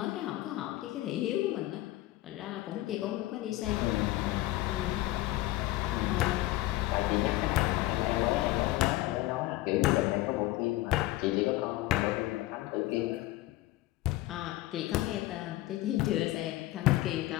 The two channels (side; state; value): right; quieter; 17.3 dB